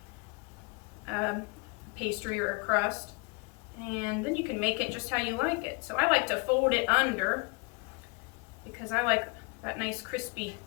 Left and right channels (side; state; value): right; quieter; 29.8 dB